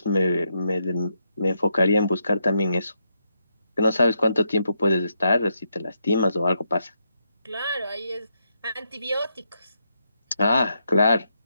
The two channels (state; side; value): inverted; both; correlation -0.81